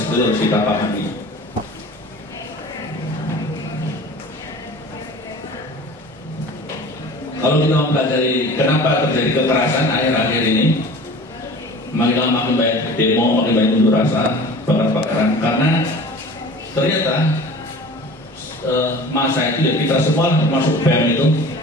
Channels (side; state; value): both; normal; correlation 0.41